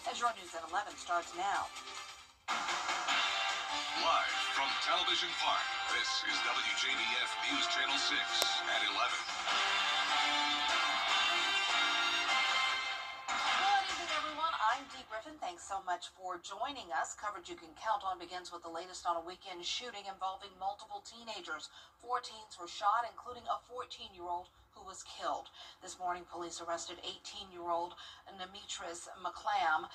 as your News at 11 starts now. Live from Television Park, this is WJBF News Channel 6 at 11. I'm Dee Griffin. Thanks so much for joining us. Coverage you can count on begins with the latest on a weekend shooting involving multiple teenagers. 4 teens were shot, including a 14-year-old who was killed. This morning, police arrested 18-year-old Demetrius McClam.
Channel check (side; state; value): both; identical; correlation 1.00